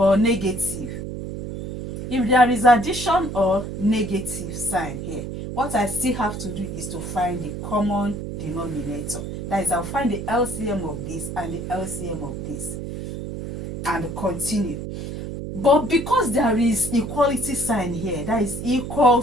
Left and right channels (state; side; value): noise; right; hum, 7 dB below the sound